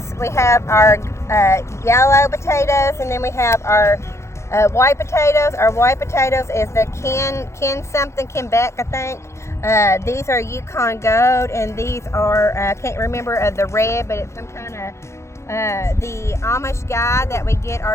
we have our yellow potatoes, and then we have our white potatoes. Our white potatoes is the Kenbeck, I think. These are Yukon Gold, and these are, I can't remember the red, but it's some kind of, the Amish guy that we get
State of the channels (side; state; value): right; late; 0.13 ms